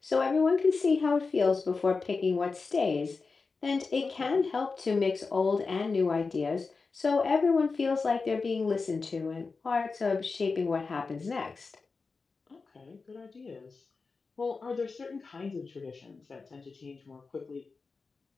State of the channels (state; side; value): quieter; right; 4.4 dB